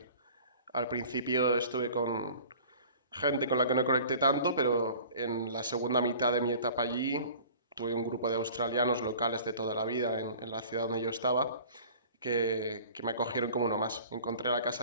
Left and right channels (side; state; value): both; inverted; correlation -0.45